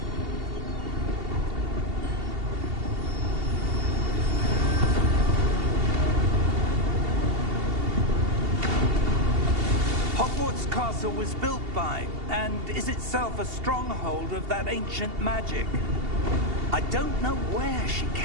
Hogwarts Castle was built by, and is itself a stronghold of that ancient magic. I don't know where she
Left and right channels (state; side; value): late; left; 2.8 ms